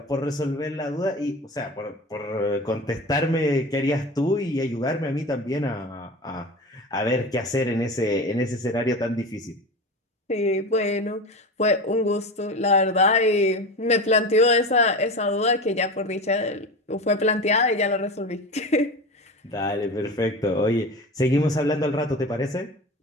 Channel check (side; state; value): both; normal; correlation 0.29